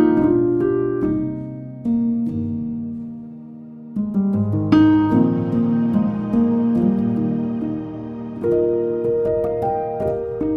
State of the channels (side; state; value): both; identical; correlation 1.00